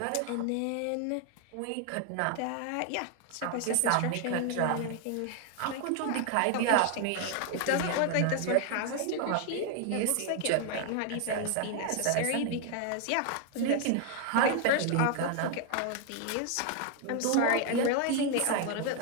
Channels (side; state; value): both; different; correlation 0.01